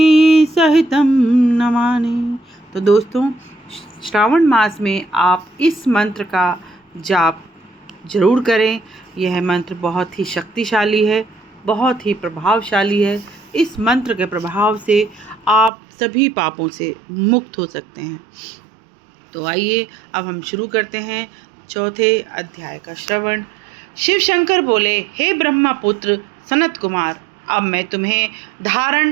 सहितं नमामि। तो दोस्तों, श्रावण मास में आप इस मंत्र का जाप जरूर करें। यह मंत्र बहुत ही शक्तिशाली है, बहुत ही प्रभावशाली है। इस मंत्र के प्रभाव से आप सभी पापों से मुक्त हो सकते हैं। तो आइए अब हम शुरू करते हैं चौथे अध्याय का श्रवण। शिव शंकर बोले, हे ब्रह्मा पुत्र सनत कुमार, अब मैं तुम्हें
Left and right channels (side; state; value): left; drops out; at 15.7 s